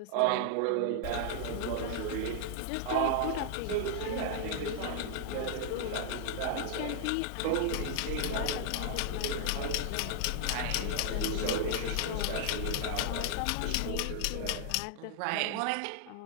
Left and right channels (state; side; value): different; both; correlation -0.01